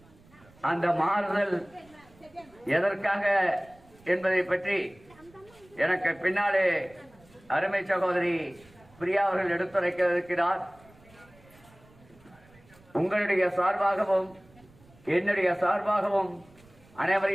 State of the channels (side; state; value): right; noise; rumble, 27 dB below the sound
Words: அந்த மாறுதல் எதற்காக என்பதை பற்றி எனக்கு பின்னாலே அருமை சகோதரி பிரியா அவர்கள் எடுத்துரைக்க இருக்கிறார். உங்களுடைய சார்பாகவும் என்னுடைய சார்பாகவும்